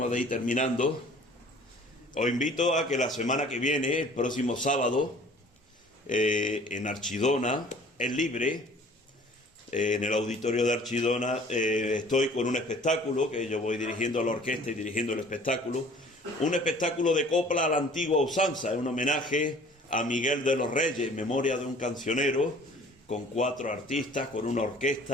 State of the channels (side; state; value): both; normal; correlation 0.51